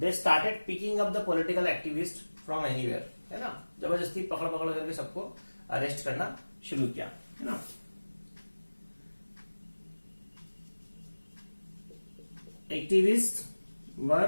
started picking up the political activist from anywhere, है ना। जबरदस्ती पकड़ पकड़ करके सबको अरेस्ट करना शुरू किया, है ना। Activists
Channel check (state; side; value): inverted; both; correlation -1.00